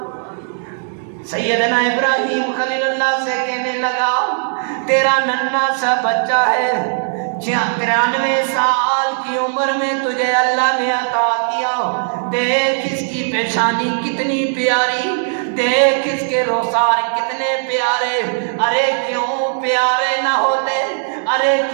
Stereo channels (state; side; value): silent; left; digital silence